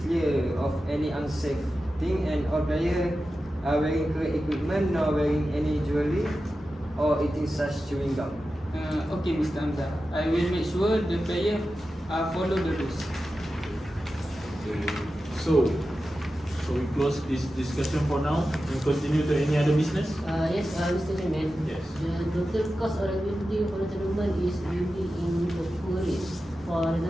clear of any unsafe thing and all players are wearing correct equipment, not wearing any jewelry or eating such chewing gum. Okay, Mr. Hamzah. I will make sure the player follow the rules. So we close this discussion for now and continue to any other business? Yes, Mr. Chairman. Yes. The total cost of the building for the tournament is really in the poor range. For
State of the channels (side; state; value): both; normal; correlation 0.93